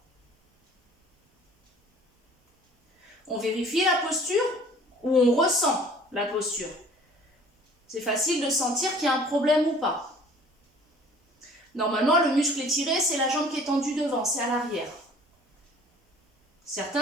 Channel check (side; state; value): both; normal; correlation 0.51